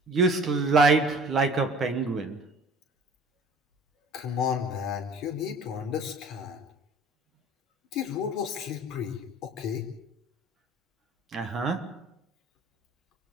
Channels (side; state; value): both; normal; correlation 0.47